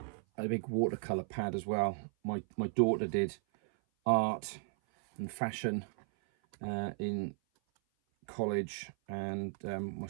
a big watercolor pad as well. My daughter did art and fashion in college, and well,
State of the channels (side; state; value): left; silent; 54 dB below the other